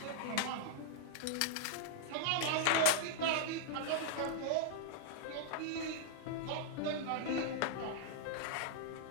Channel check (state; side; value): different; both; correlation -0.01